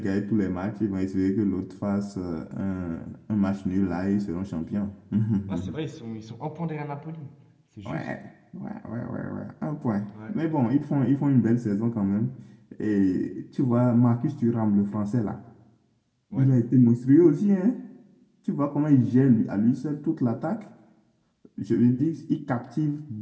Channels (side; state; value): both; identical; correlation 1.00